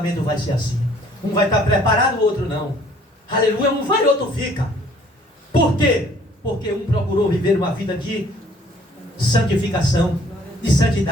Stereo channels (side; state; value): both; normal; correlation 0.58